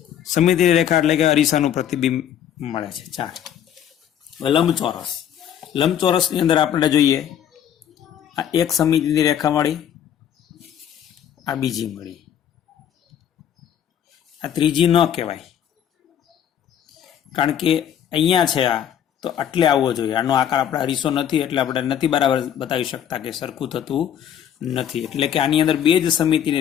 સમમિતિની રેખા એટલે કે અરીસાનું પ્રતિબિંબ મળે છે 4. લંબચોરસની અંદર આપણે જોઈએ આ એક સમમિતિની રેખા મળી, આ બીજી મળી, આ ત્રીજી ન કહેવાય કારણ કે અહીંયા છે આ તો આટલે આવવો જોઈએ. આનો આકાર આપણે અરીસો નથી એટલે આપણે નથી બરાબર બતાવી શકતા કે સરખું થતું નથી. એટલે કે આની અંદર 2 જ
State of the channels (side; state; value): right; quieter; 9.7 dB